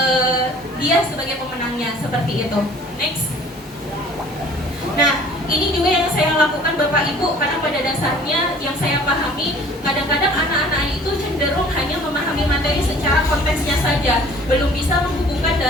dia sebagai pemenangnya seperti itu. Next. Nah, ini juga yang saya lakukan Bapak Ibu, karena pada dasarnya yang saya pahami, kadang-kadang anak-anak itu cenderung hanya memahami materi secara konteksnya saja, belum bisa menghubungkan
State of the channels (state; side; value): normal; both; correlation 0.51